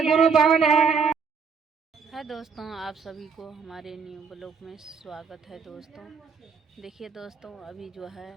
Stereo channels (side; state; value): left; quieter; 5.7 dB